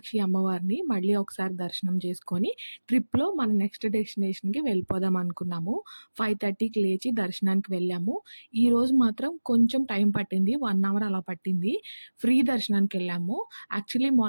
అమ్మవారిని మళ్ళీ ఒకసారి దర్శనం చేసుకొని ట్రిప్‌లో మన నెక్స్ట్ డెస్టినేషన్‌కి వెళ్ళిపోదాం అనుకున్నాము. 5:30కి లేచి దర్శనానికి వెళ్ళాము. ఈరోజు మాత్రం కొంచెం టైం పట్టింది. 1 అవర్ అలా పట్టింది. ఫ్రీ దర్శనానికి వెళ్ళాము. యాక్చువల్లీ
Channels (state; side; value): inverted; both; correlation -1.00